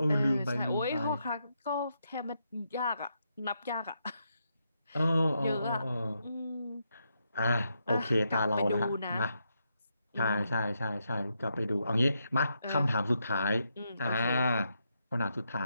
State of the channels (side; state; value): both; inverted; correlation -0.82